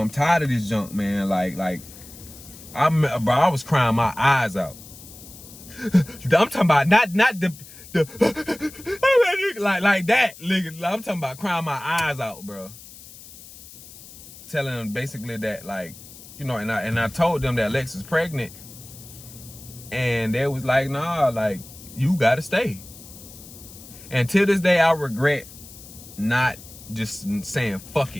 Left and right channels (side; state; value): left; noise; hiss, 18 dB below the sound